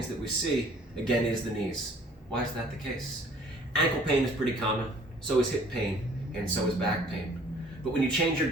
that we see, again, is the knees. Why is that the case? Ankle pain is pretty common, so is hip pain, and so is back pain. But when you change your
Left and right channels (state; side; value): normal; both; correlation 0.55